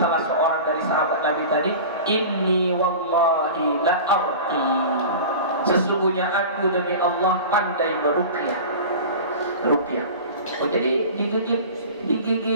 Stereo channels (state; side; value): inverted; both; correlation -0.35